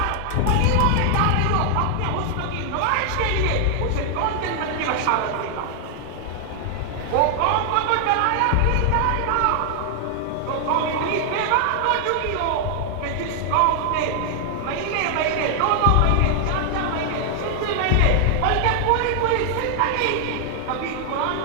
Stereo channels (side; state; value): both; different; correlation 0.00